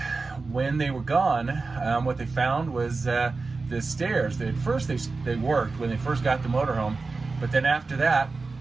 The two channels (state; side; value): quieter; left; 4.0 dB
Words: when they were gone, what they found was the stairs. At first they worked when they first got the motorhome, but then after that,